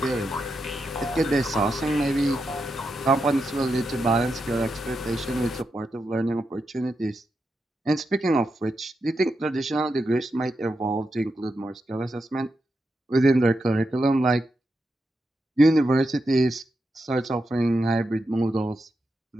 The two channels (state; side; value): normal; both; correlation 0.86